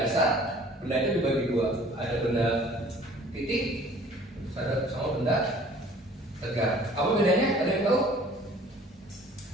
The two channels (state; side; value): normal; both; correlation 0.52